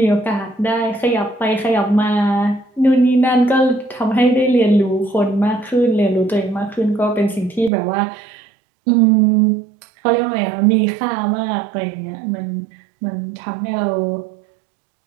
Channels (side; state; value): left; drops out; at 7.7 s